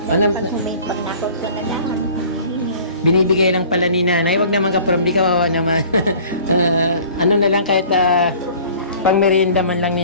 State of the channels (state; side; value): inverted; both; correlation -0.49